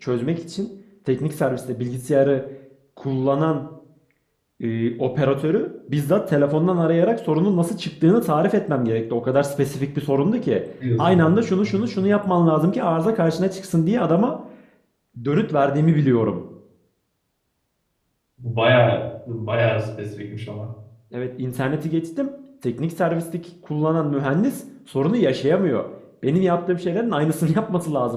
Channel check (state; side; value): identical; both; correlation 1.00